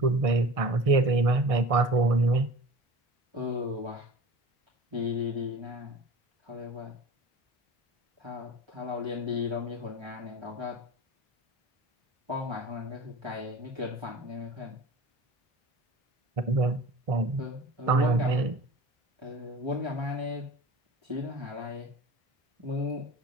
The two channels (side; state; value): left; late; 1.6 ms